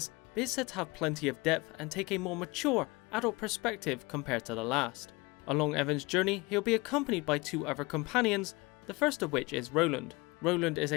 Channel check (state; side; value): quieter; right; 24.4 dB